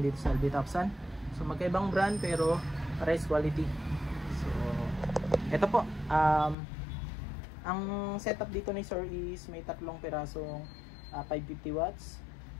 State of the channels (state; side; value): drops out; right; at 6.6 s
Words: dito sa LB Topsan. So magkaibang brand pero pares quality. So ito po, ang setup dito ni Sir is may tatlong pirasong 550 watts.